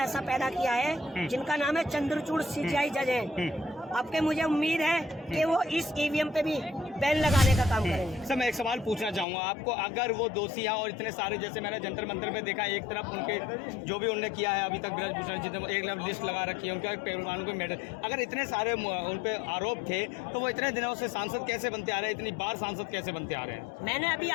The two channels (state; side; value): drops out; right; at 9.2 s